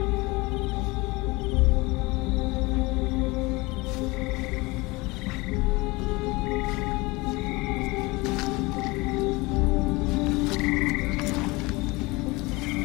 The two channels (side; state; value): right; quieter; 23.8 dB